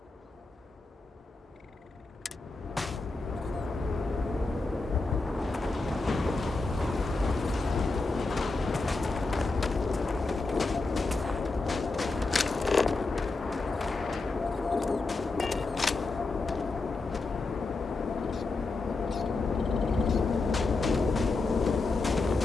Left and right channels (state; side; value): quieter; right; 3.6 dB